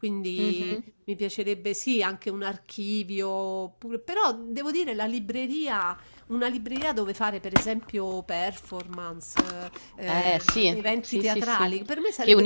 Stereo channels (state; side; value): inverted; both; correlation -1.00